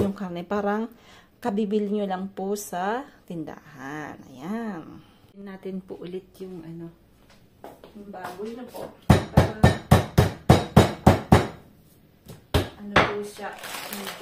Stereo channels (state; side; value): identical; both; correlation 1.00